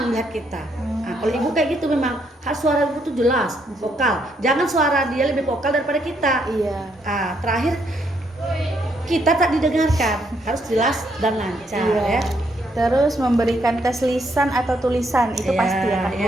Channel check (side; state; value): both; normal; correlation 0.74